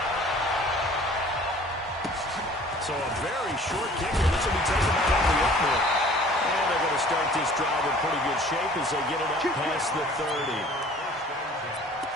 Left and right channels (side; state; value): both; normal; correlation 0.50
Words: So a very short kicker. This will be taken out of the opener. And they're going to start this drive in pretty good shape as they get it up past the 30.